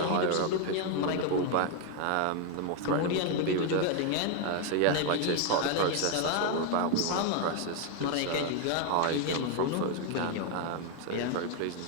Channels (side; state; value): both; different; correlation 0.01